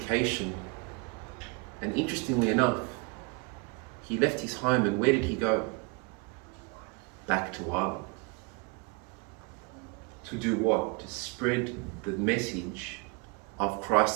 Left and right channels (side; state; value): left; quieter; 30.5 dB